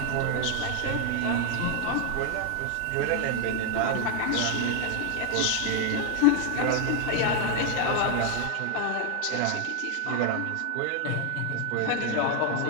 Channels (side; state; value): both; different; correlation 0.00